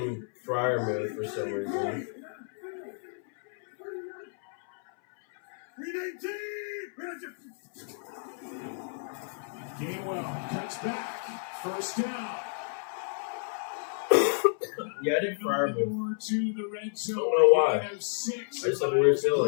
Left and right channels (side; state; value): right; silent; 58 dB below the other